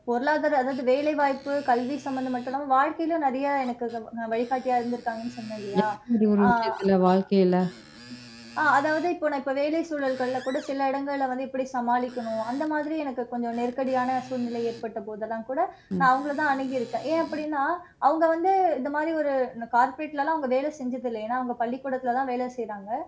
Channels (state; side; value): identical; both; correlation 1.00